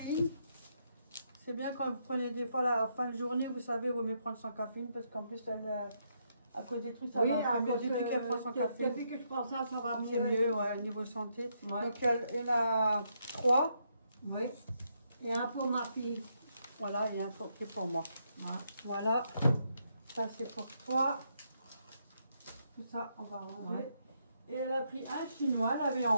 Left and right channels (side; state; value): both; inverted; correlation -0.77